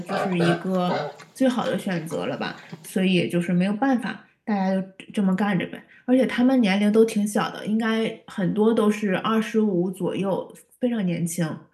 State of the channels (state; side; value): identical; both; correlation 1.00